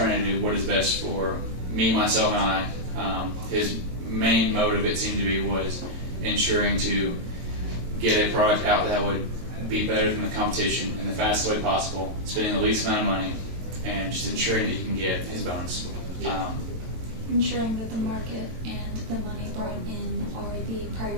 to do what is best for me, myself, and I. His main motive, it seemed to be, was ensuring to get a product out that would be better than the competition in the fastest way possible, spending the least amount of money, and just ensuring that he can get his bonus. Ensuring that the market and the money brought in are the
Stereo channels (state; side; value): late; left; 22 ms